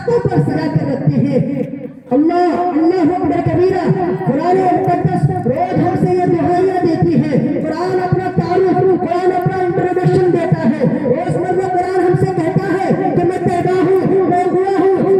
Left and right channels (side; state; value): both; identical; correlation 1.00